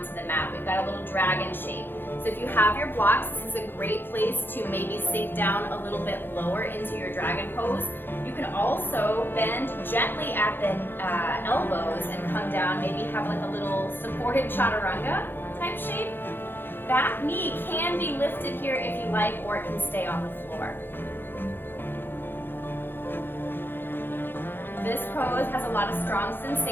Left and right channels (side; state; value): right; late; 0.099 ms